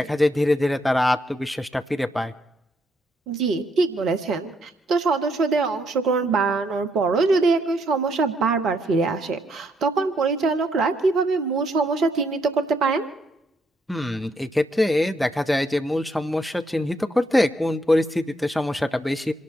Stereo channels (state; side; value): normal; both; correlation 0.74